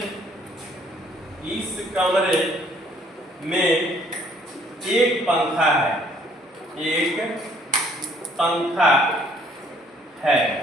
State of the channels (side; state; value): both; normal; correlation 0.62